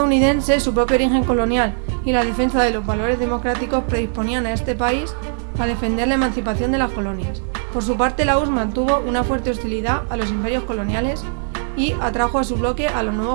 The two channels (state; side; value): silent; left; 66 dB below the other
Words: su propio origen colonial y la defensa de los valores democráticos predisponían a este país a defender la emancipación de las colonias. Por su parte, la URSS mantuvo una fuerte hostilidad a los imperios coloniales y atrajo a su bloque a los